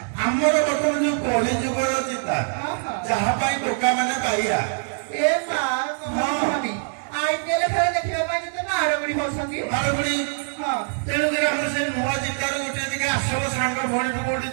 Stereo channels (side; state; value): left; silent; digital silence